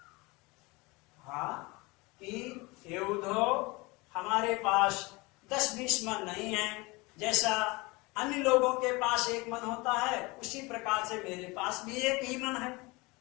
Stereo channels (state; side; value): quieter; right; 24.5 dB